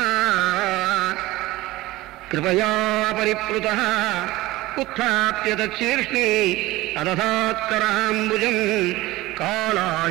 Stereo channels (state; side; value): quieter; left; 18.3 dB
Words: ಕೃಪಯಾ ಪರಿಪ್ಲುತಃ ಉತ್ಥಾಪ್ಯ ತಚ್ಛೀರ್ಷ್ಣಿ ಅದಧಾತ್ಕರಾಂಬುಜಂ